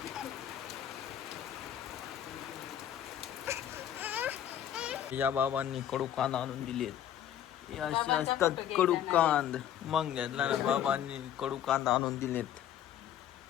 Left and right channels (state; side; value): quieter; right; 10.6 dB